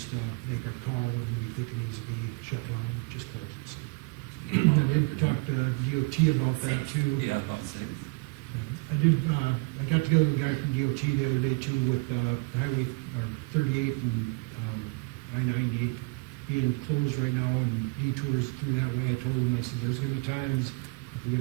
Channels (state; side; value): quieter; left; 28.4 dB